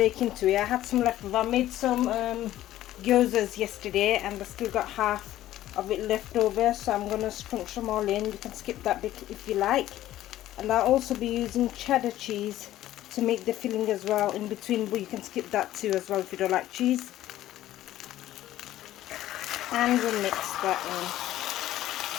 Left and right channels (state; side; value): quieter; right; 13.9 dB